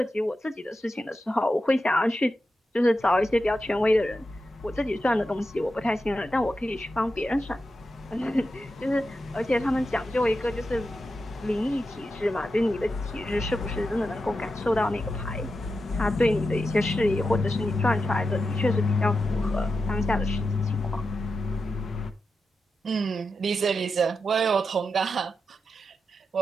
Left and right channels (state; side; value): normal; both; correlation 0.89